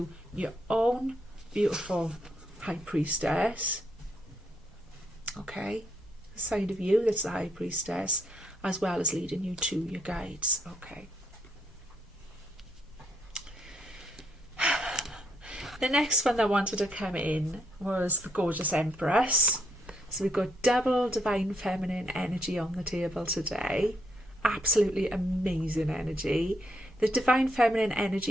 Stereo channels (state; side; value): normal; both; correlation 0.75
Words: your own beautiful High Priestess, okay? The side of you that's the High Priestess, as well as leading you to your guides, okay? The next one that wanted to come in was the gorgeous Empress. So we've got double divine feminine energy on the table today. Absolutely amazing energy. the divine feminine